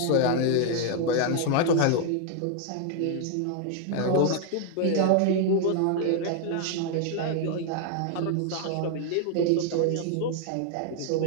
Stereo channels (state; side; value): different; both; correlation 0.00